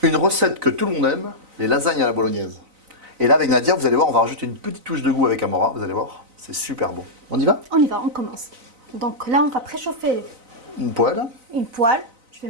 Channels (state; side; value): late; left; 4.0 ms